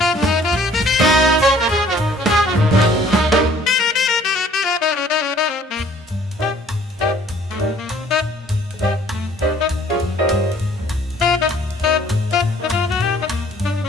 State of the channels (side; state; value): both; normal; correlation 0.57